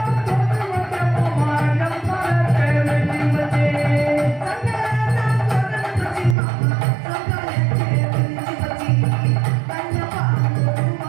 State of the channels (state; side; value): drops out; left; at 6.4 s